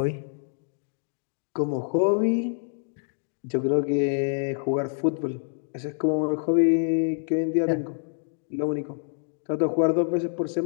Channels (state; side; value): silent; right; digital silence